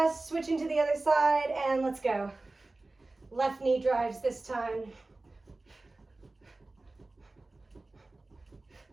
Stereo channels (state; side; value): quieter; left; 3.1 dB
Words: switching to the other side, and let's go. Left knee drives this time.